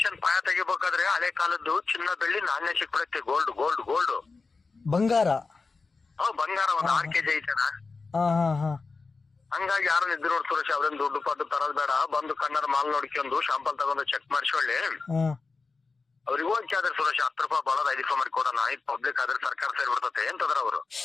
ಪಾಯ ತೆಗಿಬೇಕಾದ್ರೆ ಹಳೆ ಕಾಲದ್ದು ಚಿನ್ನ ಬೆಳ್ಳಿ ನಾಣ್ಯ ಸಿಕ್ಬಿಡುತ್ತೆ, ಗೋಲ್ಡ್ ಗೋಲ್ಡ್ ಗೋಲ್ಡ್ ಬಂಗಾರ. ಬಂಗಾರ ಒಂದ್ 6 kg ಐತಣ. ಹಾ ಹಾ ಹಾ. ಹಂಗಾಗಿ ಯಾರನ್ನ ಇದ್ರು ನೋಡಿ ಸುರೇಶ್, ಅವ್ರೇನ್ ದುಡ್ಡು ಪಡ್ಡು ತರೋದ್ ಬೇಡ, ಬಂದು ಕಣ್ಣರ ಮಾಲ್ ನೋಡ್ಕೊಂಡು ಶಾಂಪಲ್ ತಗೊಂಡು ಚೆಕ್ ಮಾಡಿಸೊಳ್ಳಿ. ಅವ್ರಿಗೆ ಹೋಗಿ ಆದ್ರೆ ಸುರೇಶ್ 10 ರೂಪಾಯಿ ಬರೋದು 5 ರೂಪಾಯಿ ಮಾಡಿ ಕೊಡೋಣ, ಇದು ಪಬ್ಲಿಕ್ ಆದ್ರೆ ಸರ್ಕಾರ ಸೇರ್ಬಿಡ್ತತೆ ಅಂತಂದ್ರ ಅವರು.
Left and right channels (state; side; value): quieter; right; 4.2 dB